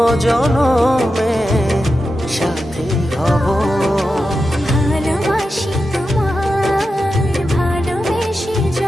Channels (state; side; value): normal; both; correlation 0.90